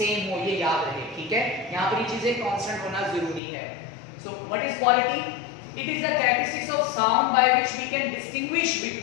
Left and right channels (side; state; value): right; drops out; at 3.4 s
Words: हो, ये याद रहे, ठीक है। यहाँ पर ये चीजें कांस्टेंट होना जरूरी है। So what is quality? It is the characteristics of sound by which we can distinguish